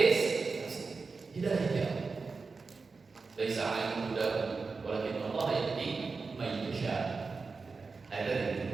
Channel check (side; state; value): left; quieter; 4.4 dB